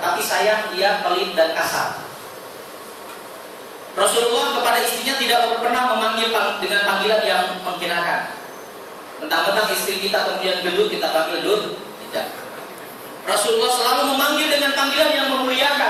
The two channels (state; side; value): identical; both; correlation 1.00